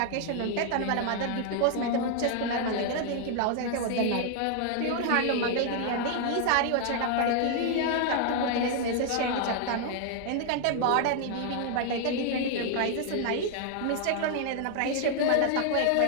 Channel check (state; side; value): different; both; correlation 0.00